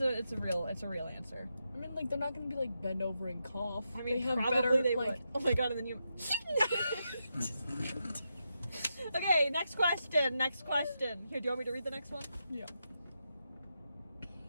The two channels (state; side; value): inverted; both; correlation -0.85